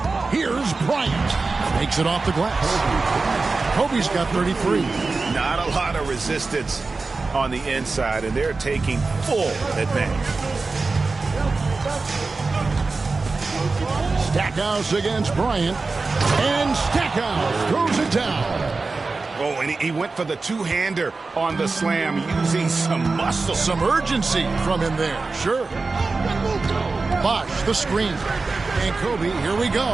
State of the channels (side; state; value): left; quieter; 3.9 dB